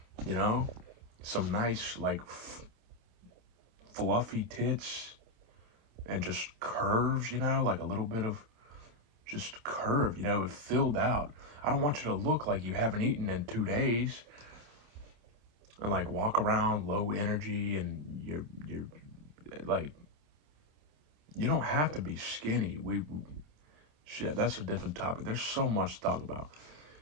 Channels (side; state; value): left; late; 27 ms